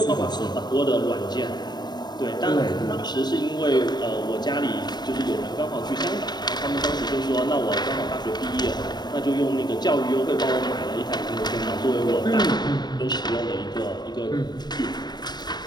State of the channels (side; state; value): right; late; 0.20 ms